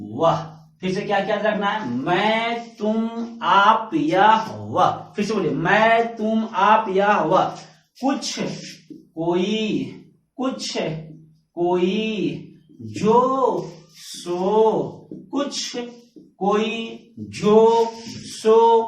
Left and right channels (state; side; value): identical; both; correlation 1.00